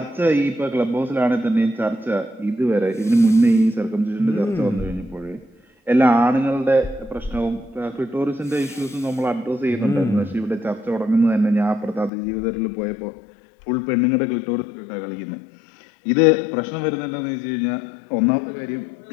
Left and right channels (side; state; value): right; drops out; at 12.1 s